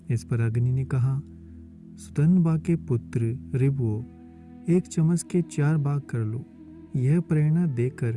इस पर अग्नि ने कहा, सुतनबा के पुत्र ऋभुओं, एक चमस के 4 भाग कर लो। यह प्रेरणा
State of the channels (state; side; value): identical; both; correlation 1.00